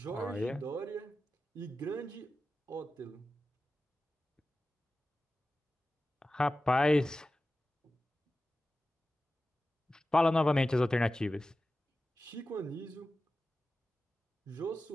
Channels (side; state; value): both; normal; correlation 0.94